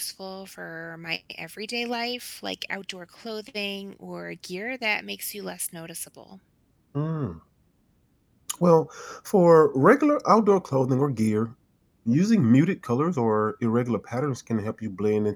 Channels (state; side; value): identical; both; correlation 1.00